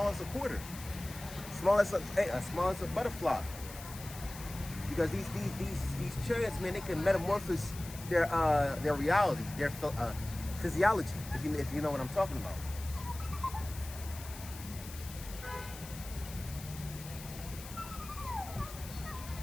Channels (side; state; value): left; noise; hiss, 14 dB below the sound